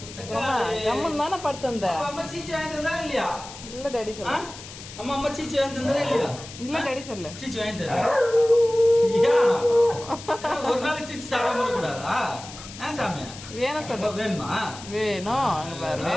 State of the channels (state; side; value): noise; left; hiss, 14 dB below the sound